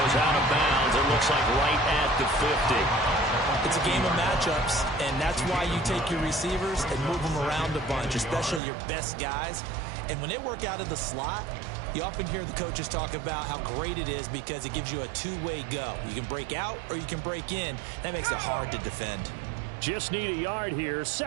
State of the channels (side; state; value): left; drops out; at 8.6 s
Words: out of bounds. It looks like right at the 50. It's a game of matchups, and that's why you take your receivers and move them around a bunch, especially your best guys. And when they work out of the slot, you often hear the coaches talk about how great it is because it gives you a two-way go. You can break out or you can break in. That makes it hard to defend. Just need a yard here,